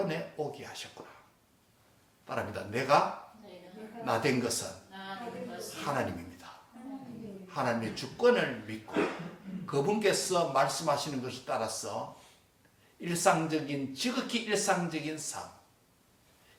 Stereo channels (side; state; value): both; identical; correlation 1.00